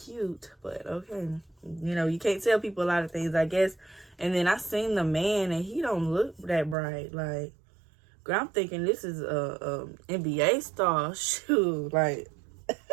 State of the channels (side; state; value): left; drops out; at 6.8 s